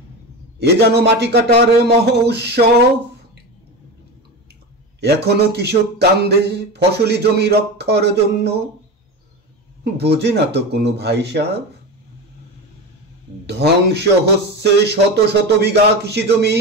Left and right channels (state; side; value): normal; both; correlation 0.24